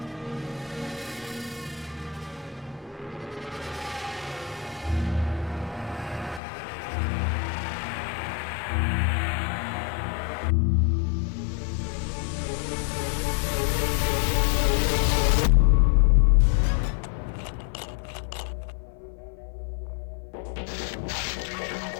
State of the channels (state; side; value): drops out; right; at 6.4 s